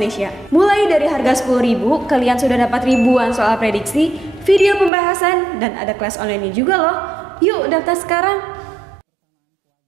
Mulai dari harga 10.000, kalian sudah dapat ribuan soal prediksi, video pembahasan, dan ada kelas online juga loh. Yuk daftar sekarang! Persamaan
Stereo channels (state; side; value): drops out; left; at 4.9 s